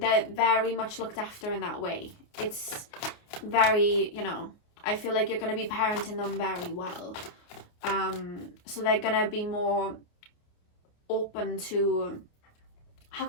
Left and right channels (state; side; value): late; right; 28 ms